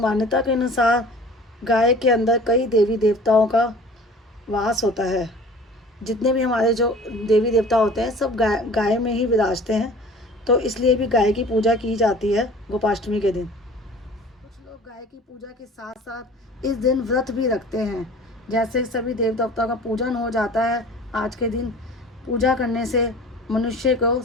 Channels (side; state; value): both; normal; correlation 0.45